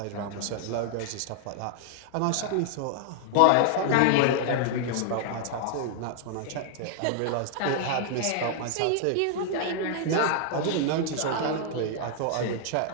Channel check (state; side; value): different; both; correlation -0.01